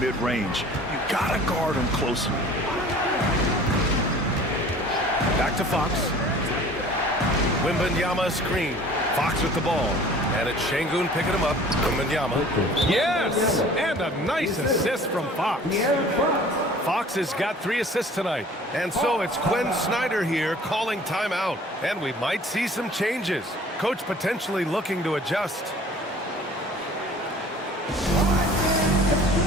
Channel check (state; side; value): normal; both; correlation 0.48